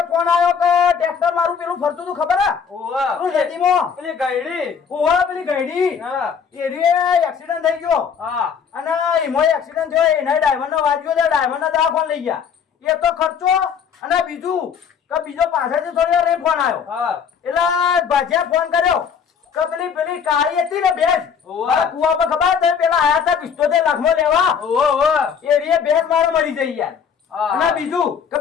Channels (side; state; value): right; quieter; 7.0 dB